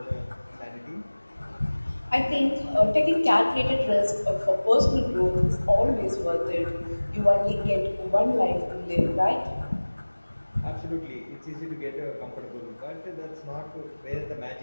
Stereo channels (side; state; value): both; inverted; correlation -1.00